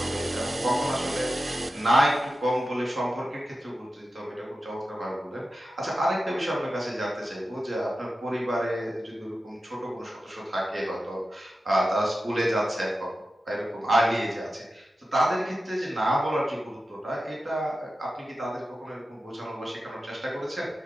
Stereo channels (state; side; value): normal; both; correlation 0.93